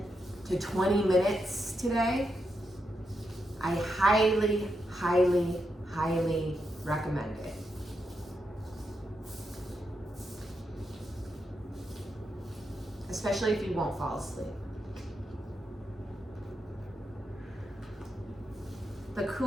to 20 minutes today, I highly, highly, highly recommend it. Especially if you won't fall asleep. The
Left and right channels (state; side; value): normal; both; correlation 0.84